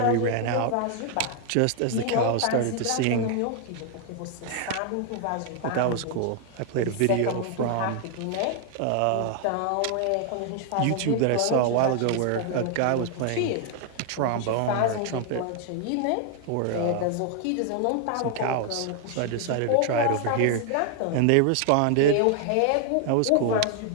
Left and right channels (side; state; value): both; different; correlation 0.00